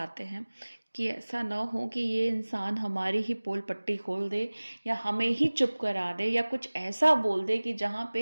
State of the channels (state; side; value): inverted; both; correlation -1.00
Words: हैं कि ऐसा ना हो कि ये इंसान हमारी ही पोल पट्टी खोल दे या हमें ही चुप करा दे या कुछ ऐसा बोल दे कि जहाँ